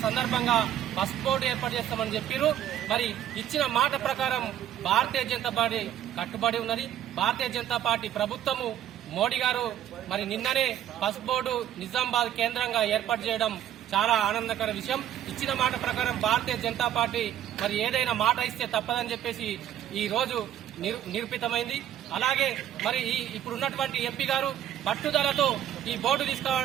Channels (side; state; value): left; quieter; 11.1 dB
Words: సందర్భంగా పసుపు బోర్డు ఏర్పాటు చేస్తామని చెప్పారు. మరి ఇచ్చిన మాట ప్రకారం భారతీయ జనతా పార్టీ కట్టుబడి ఉన్నది. భారతీయ జనతా పార్టీ ప్రభుత్వము మోడీ గారు మరి నిన్ననే పసుపు బోర్డు నిజామాబాద్ కేంద్రంగా ఏర్పాటు చేయడం చాలా ఆనందకర విషయం. ఇచ్చిన మాట ప్రకారం భారతీయ జనతా పార్టీ మరి ఏదైనా మాట ఇస్తే తప్పదని చెప్పేసి ఈ రోజు నిరూపితమైంది. అలాగే మరి ఇప్పుడున్నటువంటి ఎంపీ గారు పట్టుదలతో ఈ బోర్డు